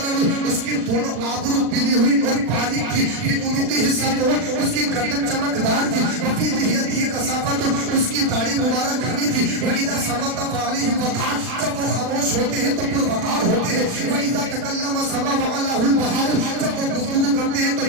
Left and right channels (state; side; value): late; left; 40 ms